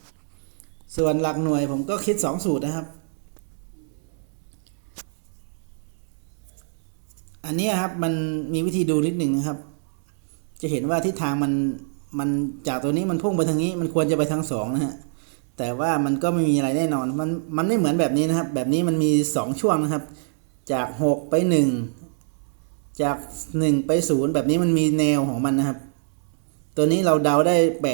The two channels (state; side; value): silent; left; 62 dB below the other